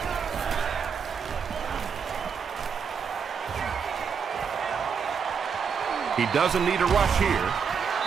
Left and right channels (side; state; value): left; quieter; 6.5 dB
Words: He doesn't need a rush here.